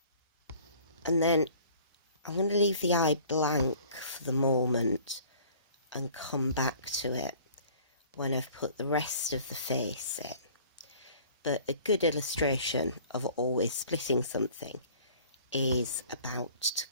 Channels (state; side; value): inverted; both; correlation -0.51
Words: And then I'm going to leave the eye blank for the moment and come back to it when I've put the rest of the face in. But a good illustration of always splitting something is about to